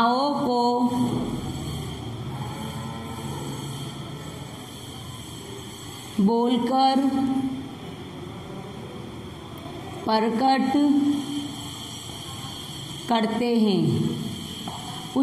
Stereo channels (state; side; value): identical; both; correlation 1.00